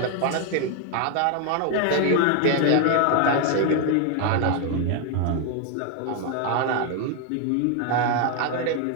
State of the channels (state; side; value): different; both; correlation 0.01